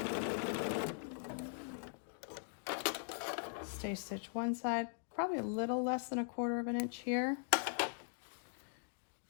Stay stitch one side, probably a little less than 1/4 inch here.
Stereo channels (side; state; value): right; silent; digital silence